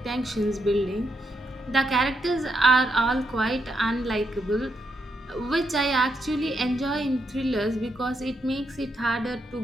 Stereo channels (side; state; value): both; normal; correlation 0.80